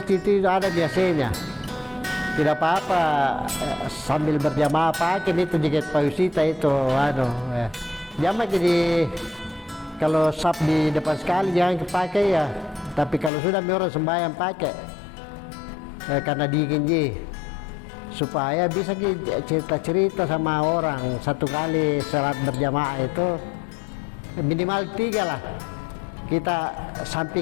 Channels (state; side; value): drops out; right; at 13.3 s